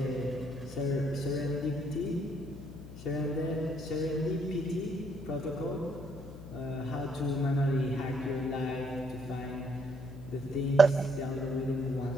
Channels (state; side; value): noise; left; hum, 14 dB below the sound